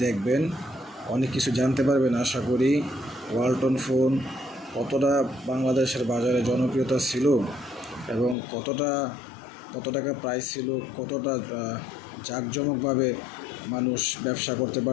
দেখবেন, অনেক কিছু জানতে পারবেন আশা করি। ওয়ালটন ফোন কতটা বাংলাদেশের বাজারে জনপ্রিয়তা ছিল এবং কত টাকা প্রাইস ছিল, কতটা জাঁকজমকভাবে মানুষ ব্যবসা করতে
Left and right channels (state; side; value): drops out; right; at 8.3 s